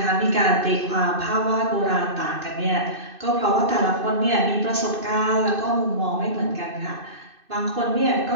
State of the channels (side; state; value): left; late; 2.6 ms